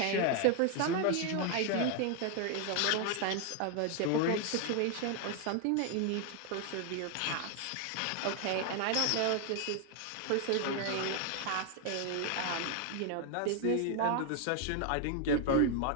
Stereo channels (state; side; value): different; both; correlation 0.00